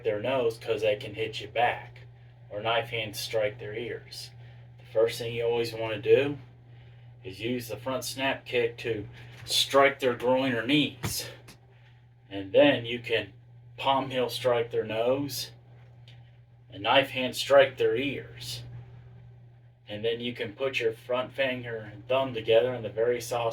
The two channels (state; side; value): identical; both; correlation 1.00